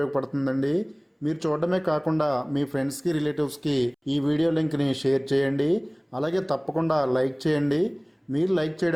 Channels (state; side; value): identical; both; correlation 1.00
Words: మీరు చూడడమే కాకుండా మీ ఫ్రెండ్స్కి రిలేటివ్స్కి ఈ వీడియో లింక్ని షేర్ చేయండి. అలాగే తప్పకుండా లైక్ చేయండి. మీరు లైక్